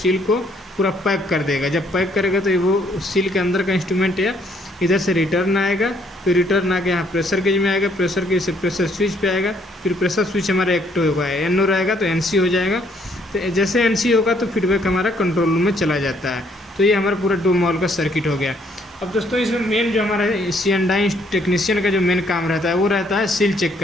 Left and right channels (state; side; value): normal; both; correlation 0.67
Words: को पूरा पैक कर देगा। जब पैक करेगा तो वो सील के अंदर का इंस्ट्रूमेंट है इधर से रिटर्न आएगा, फिर रिटर्न आके यहाँ प्रेशर गेज में आएगा, प्रेशर गेज से प्रेशर स्विच पे आएगा, फिर प्रेशर स्विच हमारा एक्टिव होगा, एन हो रहेगा तो एनसी हो जाएगा। तो जैसे एनसी होगा तो फीडबैक हमारा कंट्रोल रूम में चला जाता है। तो ये हमारा पूरा डोम वॉल्व का सर्किट हो गया। अब दोस्तों इसमें मेन जो हमारा C&I टेक्नीशियन का जो मेन काम रहता है वो रहता है सील चेक